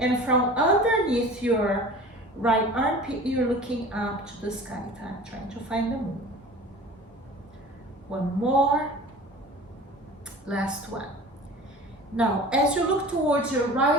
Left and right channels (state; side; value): normal; both; correlation 0.40